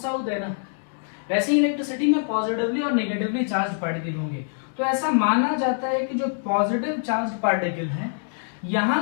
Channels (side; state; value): right; silent; digital silence